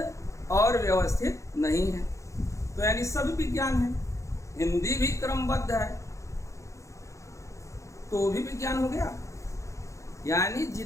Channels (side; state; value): right; late; 0.15 ms